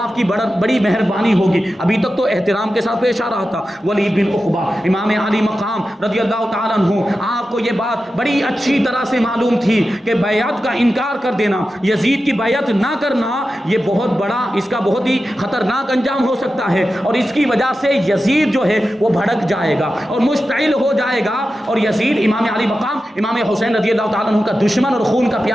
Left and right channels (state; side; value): normal; both; correlation 0.92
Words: کی بڑی مہربانی ہوگی. ابھی تک تو احترام کے ساتھ پیش آ رہا تھا. ولید بن عقبہ امام علی مقام رضی اللہ تعالیٰ عنہ، آپ کو یہ بات بڑی اچھی طرح سے معلوم تھی کہ بیعت کا انکار کر دینا، یزید کی بیعت نہ کرنا، یہ بہت بڑا، اس کا بہت ہی خطرناک انجام ہو سکتا ہے، اور اس کی وجہ سے یزید جو ہے وہ بھڑک جائے گا اور مشتعل ہو جائے گا، اور یزید امام علی مقام امام حسین رضی اللہ تعالیٰ عنہ کا دشمن اور خون کا